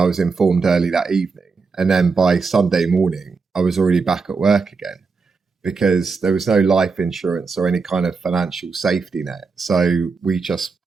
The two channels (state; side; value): quieter; left; 4.7 dB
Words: was informed early that evening. And then by Sunday morning, I was already back at work again because there was no life insurance or any kind of financial safety net. So we just